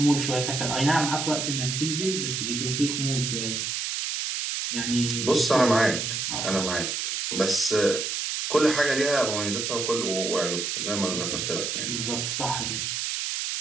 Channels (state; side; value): noise; right; hiss, 2 dB below the sound